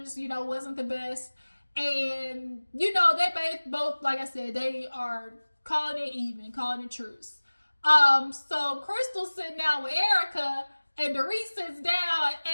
you know, wasn't the best. And, you know, they both, like I said, they are calling it even, calling it truce. So Crystal's sitting down with Erica, and Dorit sits down,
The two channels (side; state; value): both; inverted; correlation -1.00